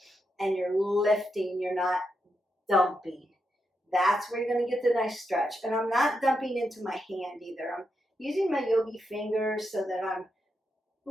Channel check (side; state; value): both; normal; correlation 0.84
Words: And you're lifting, you're not dumping. That's where you're going to get the nice stretch. And I'm not dumping into my hand either. I'm using my yogi fingers so that I'm